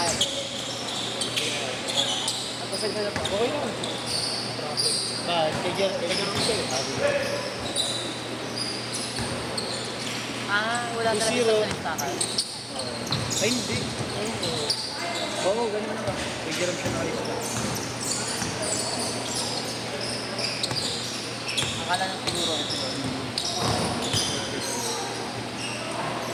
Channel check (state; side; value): identical; both; correlation 1.00